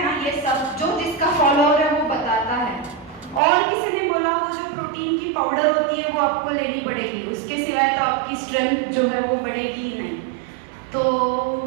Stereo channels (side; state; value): left; drops out; at 3.4 s